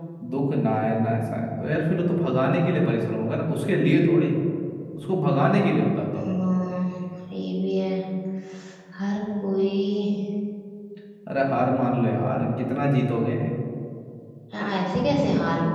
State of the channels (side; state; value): both; identical; correlation 1.00